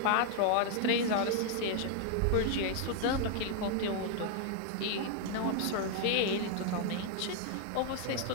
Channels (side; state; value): both; different; correlation 0.00